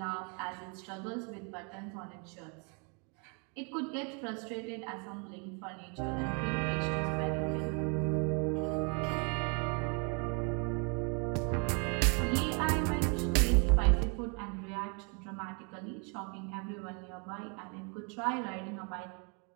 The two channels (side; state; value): left; quieter; 35.7 dB